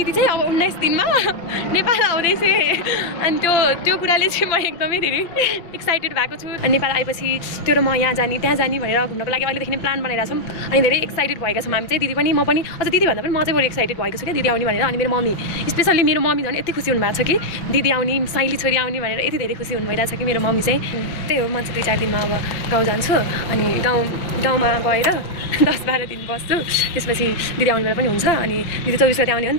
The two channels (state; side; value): late; right; 6.5 ms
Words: चाहिँ अब 19 दिनमा नेपाल आउँदैछ अनि त्यो कुराले चाहिँ म एकदमै धेरै एक्साइटेड भएको छु। अनि नेपाल आएपछि त्यो र म यहाँ जाने त्यहाँ जाने भनेर घुम्नको लागि अहिलेदेखि नै प्लान बनाइरहेको छौँ। अनि धेरै एक्साइटेड भएका छौँ हामी चाहिँ, दिदी पनि म पनि। अझ दिदी भन्दा पनि म चाहिँ बरु एक्साइटेड भएको छु कि दिदी आउने भनेर। अनि मेरो मम्मी स्पेसल्ली मेरो मम्मी झन् यति खुसी हुनुभएको छ कि दिदी आउने, साइली छोरी आउने भनेर यति धेरै खुसी हुनुभइरहेको छ कि मेरो मम्मी चाहिँ। त्यही हो, म चाहिँ 2-4 दिनमा अब गाउँ जान्छु अनि गाउँमा गएर 10-12 दिन बस्छु। त्यसपछि दिदी आउने बेला पनि हुन्छ। अनि दिदी 24 गते आउने हो नि